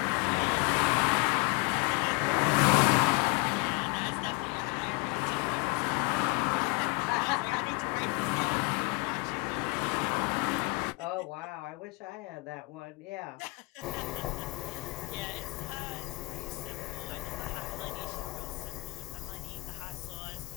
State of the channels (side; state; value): right; quieter; 26.9 dB